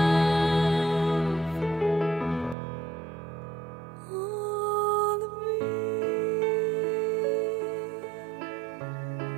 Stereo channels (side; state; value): left; drops out; at 2.6 s